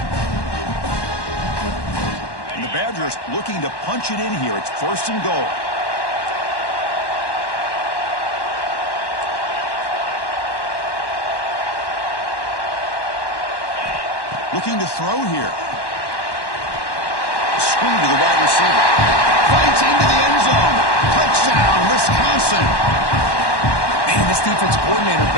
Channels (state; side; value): late; right; 1.1 ms